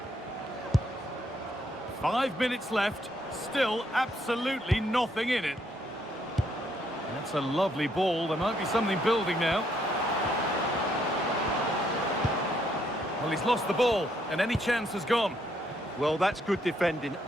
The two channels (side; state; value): both; normal; correlation 0.72